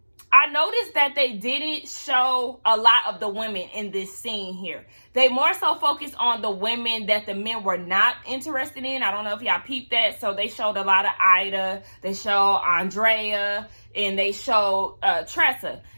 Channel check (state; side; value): inverted; both; correlation -1.00